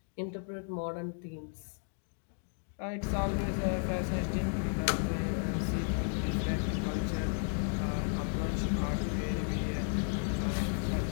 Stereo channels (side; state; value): right; silent; 55 dB below the other